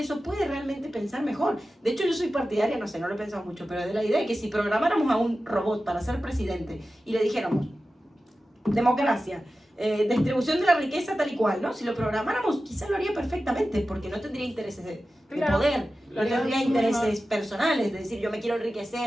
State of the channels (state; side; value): normal; both; correlation 0.94